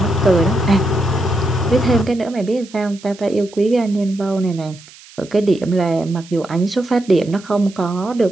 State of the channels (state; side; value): noise; right; hiss, 22 dB below the sound